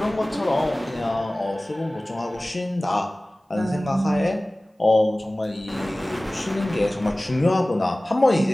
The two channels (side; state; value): both; normal; correlation 0.98